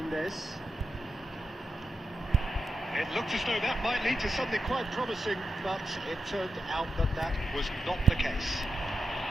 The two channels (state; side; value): normal; both; correlation 0.88